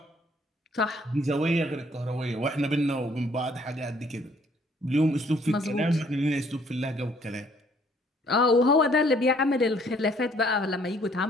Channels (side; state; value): both; normal; correlation 0.62